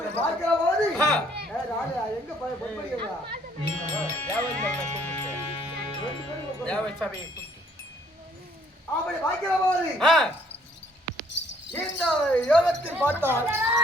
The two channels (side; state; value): both; normal; correlation 0.62